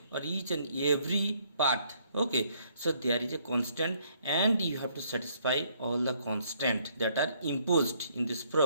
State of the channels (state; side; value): inverted; both; correlation -0.67